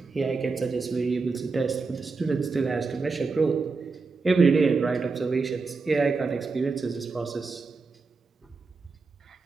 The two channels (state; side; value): quieter; left; 4.3 dB